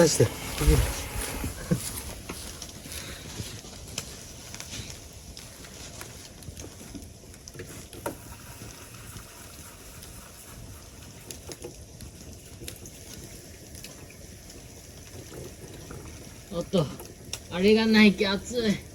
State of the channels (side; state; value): both; identical; correlation 1.00